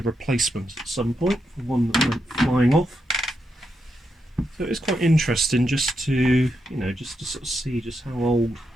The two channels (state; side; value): normal; both; correlation 0.83